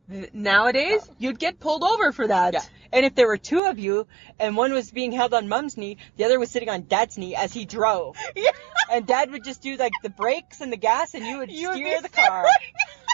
nowadays, you'd get pulled over for that. Yeah. And if there were 2 of you and one was being held on Mom's knee, the other was sitting on Dad's knee as he drove. Yeah. And Dad would just do like the brakes and the gas and you would steer the car.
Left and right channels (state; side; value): drops out; left; at 3.6 s